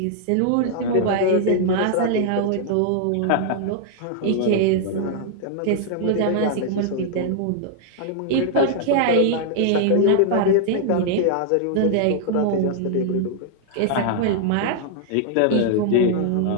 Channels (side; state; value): both; different; correlation -0.01